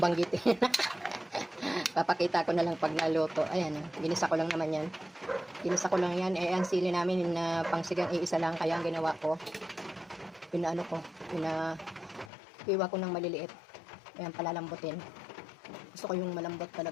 Papakita ko na lang pag naluto. Ayan, ginisa ko lang naman yan. Ginisa ko lang yan. Ang sili namin na pangsigang iisa lang. Kaya ang ginawa ko, iwa ko ng maliliit. Ayan, palalambutin. Gusto ko yung malambot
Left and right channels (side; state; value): right; drops out; at 12.3 s